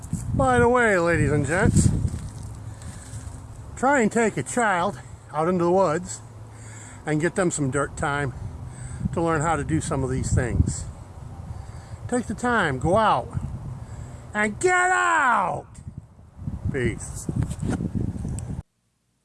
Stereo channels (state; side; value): identical; both; correlation 1.00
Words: By the way, ladies and gents, Try and take a child out into the woods and get them some dirt time to learn how to do some of these things. Take the time, go out, and get out! Peace.